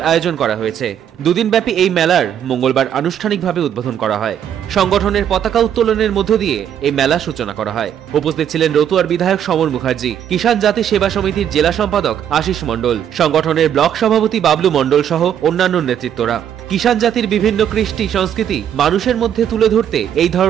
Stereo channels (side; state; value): left; quieter; 9.6 dB